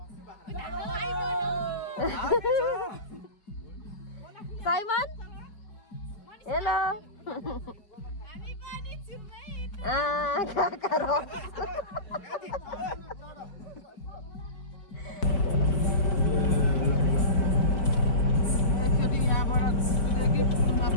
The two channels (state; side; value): late; right; 4.7 ms